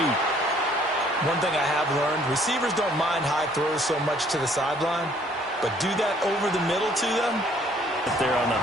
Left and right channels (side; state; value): both; normal; correlation 0.61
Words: One thing I have learned, receivers don't mind high throws so much to the sideline, but do that over the middle to them. There on the